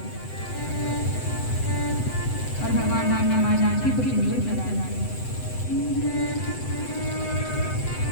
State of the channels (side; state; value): right; late; 7.9 ms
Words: और भगवान राम ने माँ जानकी को सिंदूर चढ़ाया।